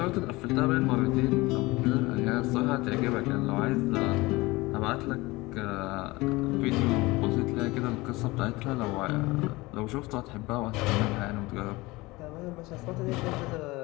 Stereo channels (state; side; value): quieter; right; 21.7 dB